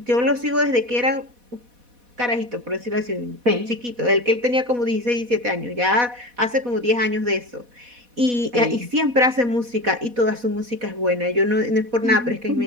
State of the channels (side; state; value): left; late; 4.1 ms